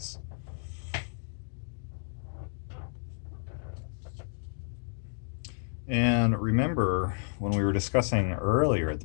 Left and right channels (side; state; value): right; silent; digital silence